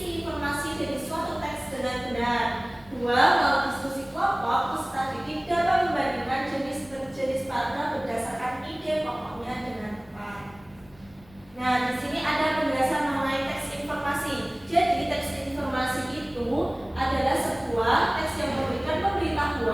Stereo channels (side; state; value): left; noise; rumble, 26 dB below the sound